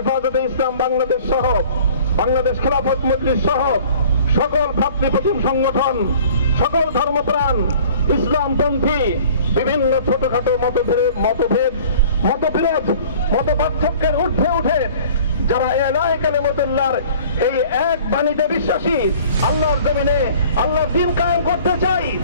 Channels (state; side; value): inverted; both; correlation -0.49